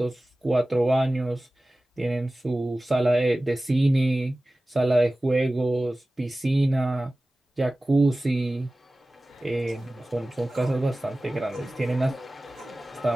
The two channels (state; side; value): normal; both; correlation 0.97